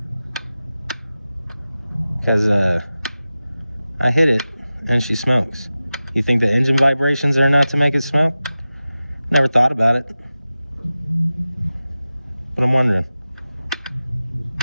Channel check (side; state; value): both; inverted; correlation -0.95